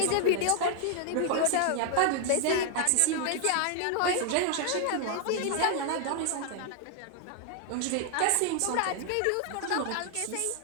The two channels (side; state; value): both; different; correlation 0.00